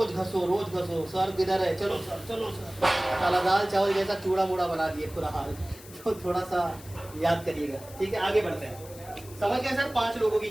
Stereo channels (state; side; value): noise; left; hiss, 19 dB below the sound